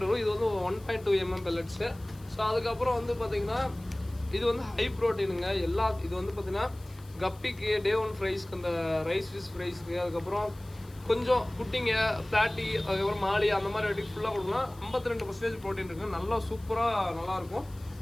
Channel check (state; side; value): noise; left; hiss, 25 dB below the sound